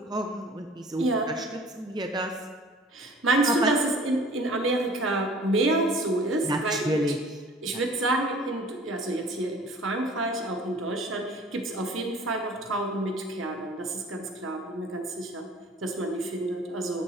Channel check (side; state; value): both; normal; correlation 0.49